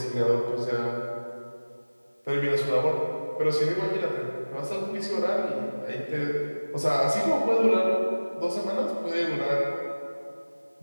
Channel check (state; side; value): inverted; both; correlation -1.00